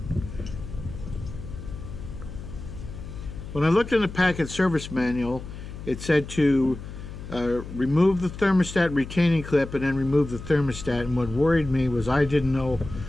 When I looked in the Packard service manual, it said to remove the thermostat retaining clip and then remove the thermostat. And what worried me was I didn't know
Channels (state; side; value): noise; left; hum, 11 dB below the sound